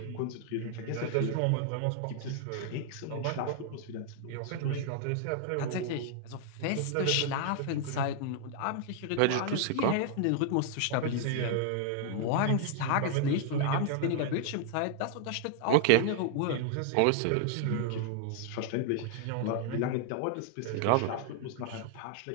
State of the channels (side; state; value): both; different; correlation 0.00